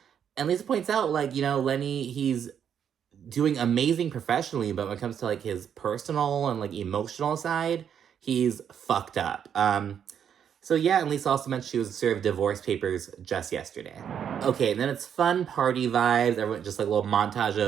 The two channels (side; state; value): left; quieter; 8.4 dB